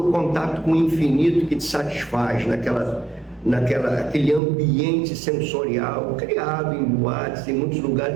contato com o infinito que te satisfaz, naquele ambiente sensorial criado em boates, em muitos lugares.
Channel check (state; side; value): drops out; left; at 4.4 s